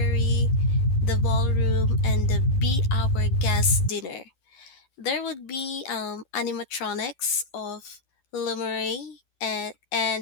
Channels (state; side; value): late; right; 12 ms